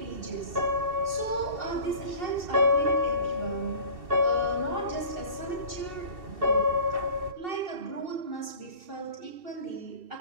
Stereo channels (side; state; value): left; late; 2.7 ms